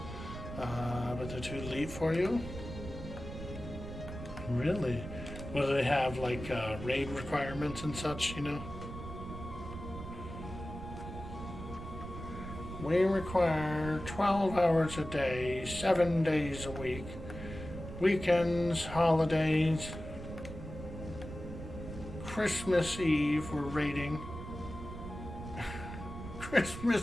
but they're too elite for you? Really? What do they have, like raid requirements and such, you know? We require 12 hours a day, 7 days a week, weekends, holidays, Christmas Eve, we're raiding. Christmas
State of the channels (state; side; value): noise; right; rumble, 10 dB below the sound